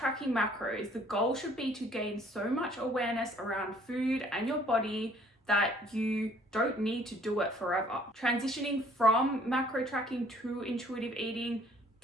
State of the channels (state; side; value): normal; both; correlation 0.59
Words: macros, the goal should be to gain so much awareness around food and your body that you don't need to do it forever. Transitioning from macro tracking to intuitive eating